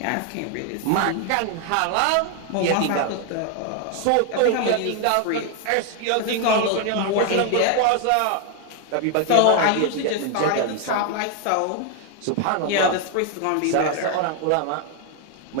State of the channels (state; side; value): different; both; correlation 0.00